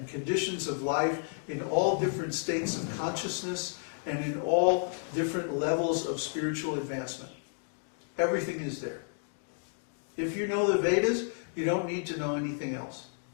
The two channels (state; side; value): silent; right; digital silence